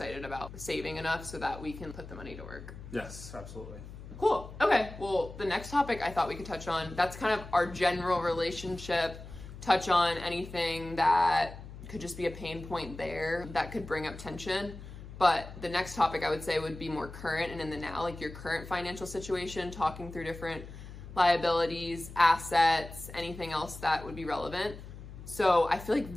about saving enough so that we can put the money to work. Yes, absolutely. Cool. Okay. Well, the next topic I thought we could touch on, that's kind of our general relationship, touch on anything that could just be a pain point there that could bring up tension. But the next topic I would say would be more current and in the now, like your current financial situation, talking through different liabilities, assets, anything else that would be relevant. So I feel like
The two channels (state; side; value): noise; left; hum, 13 dB below the sound